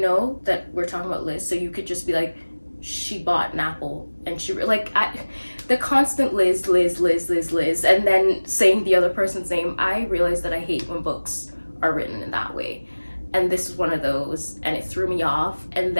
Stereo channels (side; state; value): both; inverted; correlation -1.00